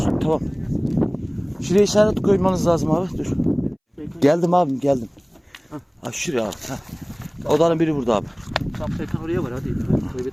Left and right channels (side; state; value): both; identical; correlation 1.00